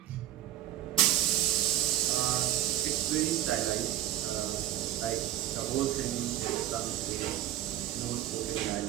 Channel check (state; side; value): quieter; left; 12.8 dB